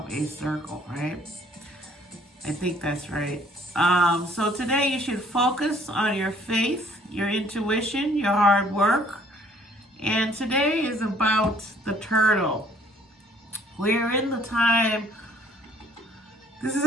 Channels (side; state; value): both; normal; correlation 0.60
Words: a circle, right? I think that's right. So today you should focus on your faith, your intuition, your hard work. And today is about the turtle. We're in the time. This is